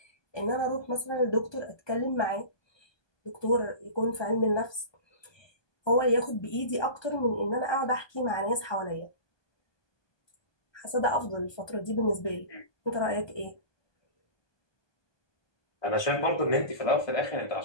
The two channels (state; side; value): late; right; 1.2 ms